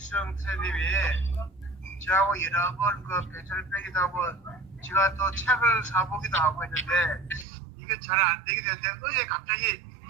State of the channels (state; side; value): drops out; left; at 7.5 s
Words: 선생님이 저하고 여러 번 그 배철 빼기도 하고 제가 또 책을 사보기도 하고 했는데 이게 잘 안 되게 됐는데 어제 갑자기